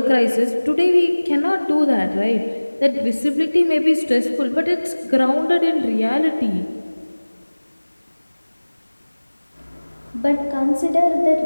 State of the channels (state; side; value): inverted; both; correlation -1.00